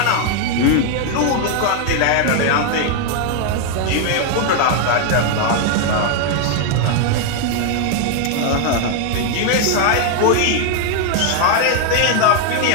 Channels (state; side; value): different; both; correlation 0.00